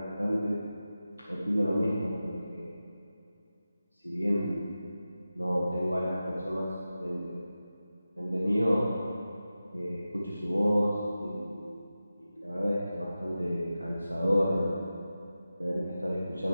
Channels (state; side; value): inverted; both; correlation -0.94